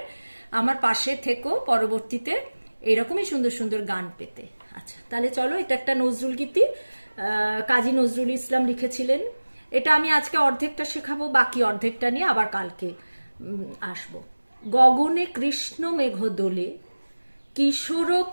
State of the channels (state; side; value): inverted; both; correlation -1.00